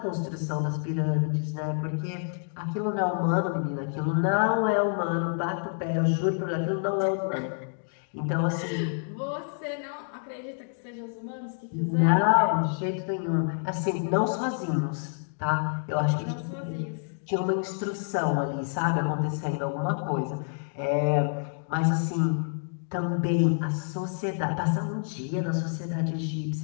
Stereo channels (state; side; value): silent; right; digital silence